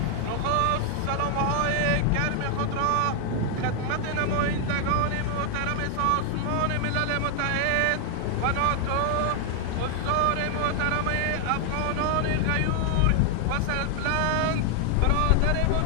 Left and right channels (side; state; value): both; different; correlation 0.00